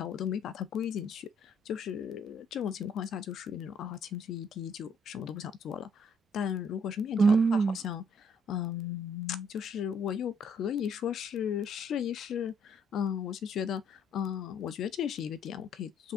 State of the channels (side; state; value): both; normal; correlation 0.66